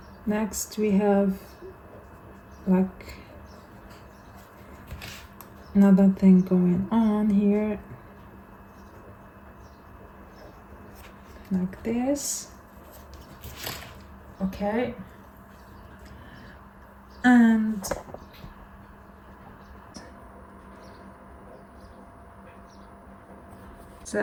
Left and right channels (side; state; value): both; identical; correlation 1.00